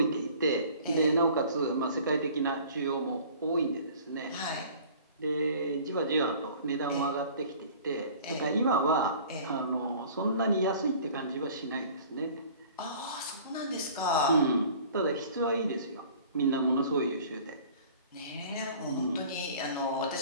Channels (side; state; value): both; inverted; correlation -0.48